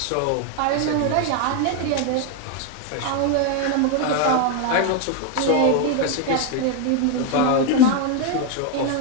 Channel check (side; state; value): both; different; correlation 0.01